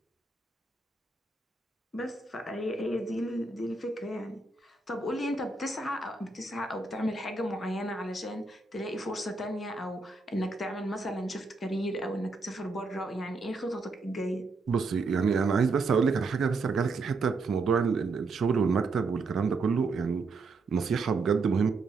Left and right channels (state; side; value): quieter; left; 3.8 dB